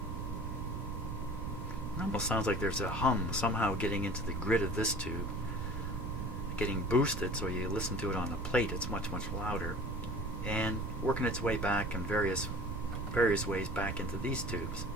Almost sounds like there's a hum somehow getting into the grid of this tube, getting boosted, so you listen to it on the plate, it's much louder, and working its way back in various ways back into these tubes.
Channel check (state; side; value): noise; right; rumble, 4 dB below the sound